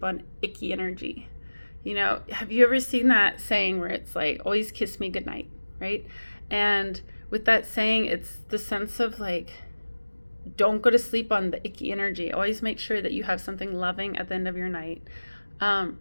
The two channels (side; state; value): both; inverted; correlation -1.00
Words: on icky energy? Have you ever seen that saying where it's like, always kiss me goodnight, right? And with that saying, it's the sense of like, don't go to sleep on the icky energy. Always make sure that you have something loving at the end of your night.